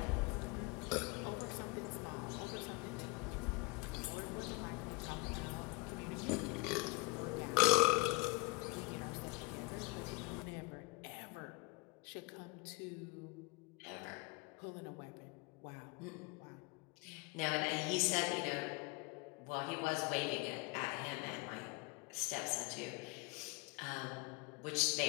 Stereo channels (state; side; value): quieter; right; 27.6 dB